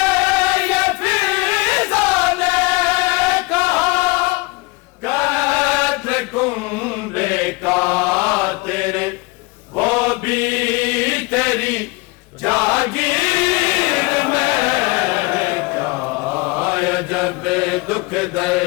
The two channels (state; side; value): quieter; right; 25.5 dB